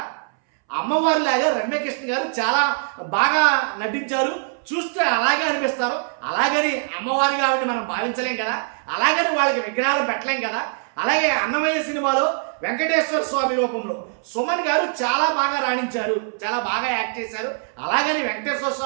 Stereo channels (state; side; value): silent; left; 64 dB below the other